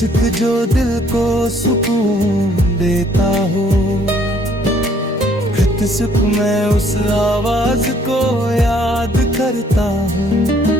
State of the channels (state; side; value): normal; both; correlation 0.63